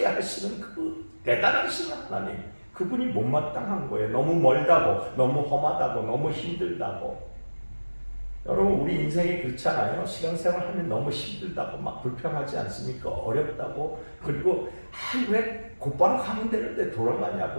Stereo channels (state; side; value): inverted; both; correlation -1.00